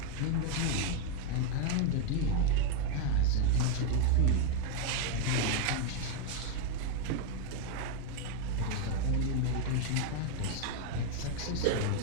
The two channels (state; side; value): different; both; correlation 0.01